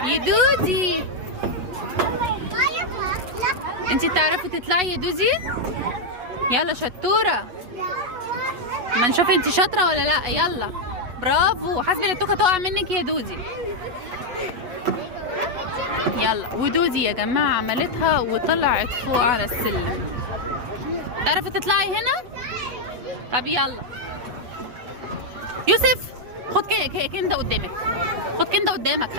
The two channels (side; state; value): left; late; 8.2 ms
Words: يا دودي. انتي بتعرفي تطلعي يا دودي؟ يلا شطورة، ما نشوف انتي شاطرة ولا لا. يلا برافو، حاسبة التوكة تقع منك يا دودي. يلا، ودودي يا جماعة عملتها وطلعت فوق على السلم. تعرفي تطلعي هنا؟ طب يلا يوسف، خد كنده قدامك، خد كنده قدامك،